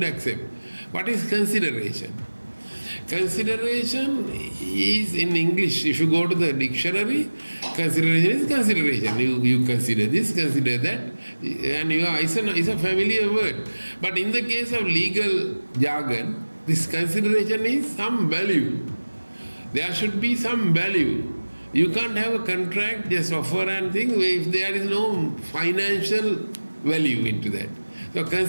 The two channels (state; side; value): inverted; both; correlation -1.00